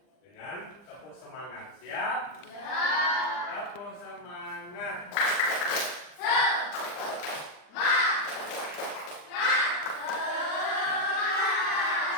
dengan tepuk semangat. Siap? Tepuk semangat.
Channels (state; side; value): late; right; 40 ms